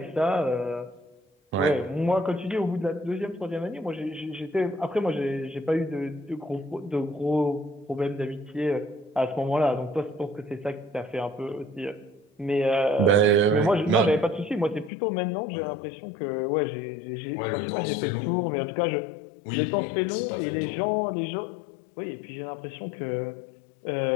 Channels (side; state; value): right; drops out; at 14.9 s